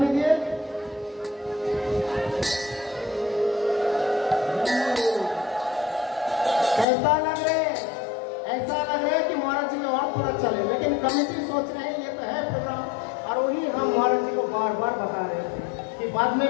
দিয়ে। कैसा लग रहे? ऐसा लग रहा है कि महाराज जी और थोड़ा चले, लेकिन कमेटी सोच रहे हैं ये तो है प्रोग्राम, और वही हम महाराज जी को बार बार बता रहे हैं कि बाद में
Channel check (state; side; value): drops out; right; at 6.9 s